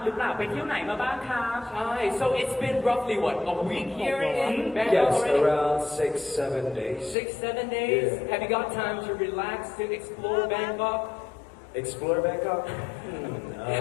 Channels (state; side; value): drops out; right; at 7.2 s